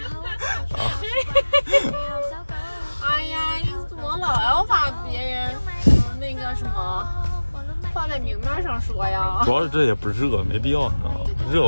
哎呀，你怎么老要把别人那个什么放在明面上说呀？主要是这也不热，没必要，你知道吗？热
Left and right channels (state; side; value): inverted; both; correlation -1.00